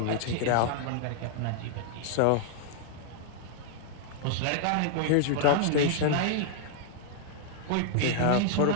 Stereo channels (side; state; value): both; different; correlation -0.01